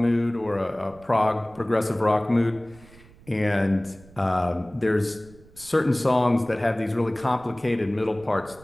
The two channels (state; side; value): noise; right; rumble, 24 dB below the sound